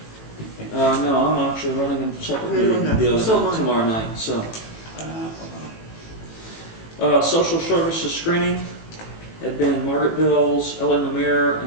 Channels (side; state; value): right; late; 18 ms